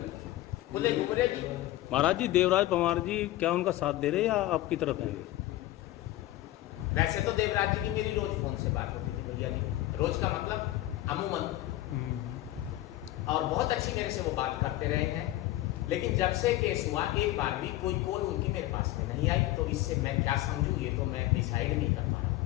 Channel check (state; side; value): quieter; right; 15.9 dB